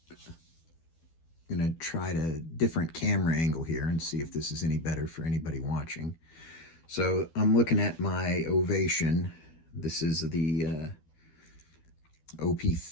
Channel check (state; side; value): late; right; 12 ms